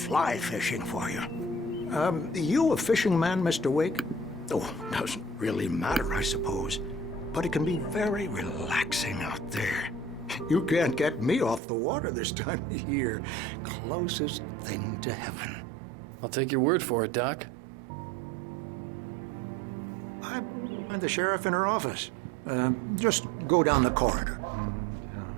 fishing for you. You a fishing man, Mr. Wake? Oh, doesn't really matter, I suppose. But it can be very relaxing out there. You can't get me off the water this time of year. Closest thing to heaven. I'll take your word for it, Doc. I believe you'll find the sheriff in her office. Just go down the corridor.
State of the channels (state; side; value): drops out; left; at 11.6 s